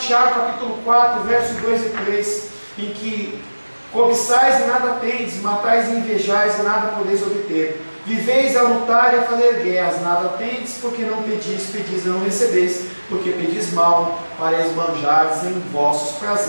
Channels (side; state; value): both; inverted; correlation -1.00